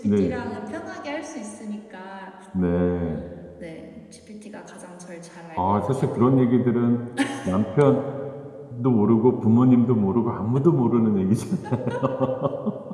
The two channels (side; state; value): both; identical; correlation 1.00